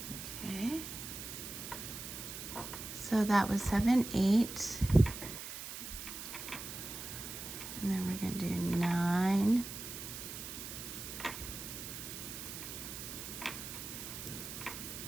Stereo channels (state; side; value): noise; right; hiss, 8 dB below the sound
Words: Okay. So that was 7, 8. And then we're gonna do 9,